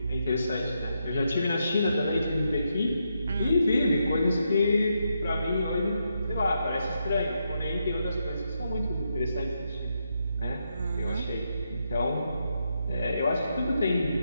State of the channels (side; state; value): both; inverted; correlation -0.82